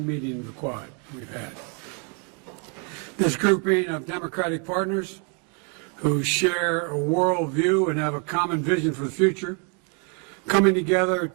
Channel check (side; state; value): left; quieter; 37.9 dB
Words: meeting of the Quad we've had. This grouping of democratic partners who share a worldview and have a common vision for the future, coming together